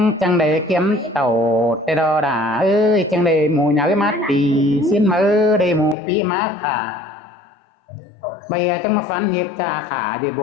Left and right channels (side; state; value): right; drops out; at 6.0 s